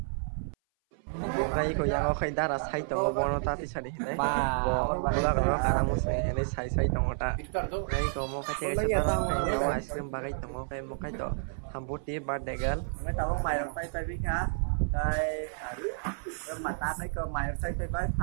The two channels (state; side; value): silent; left; 57 dB below the other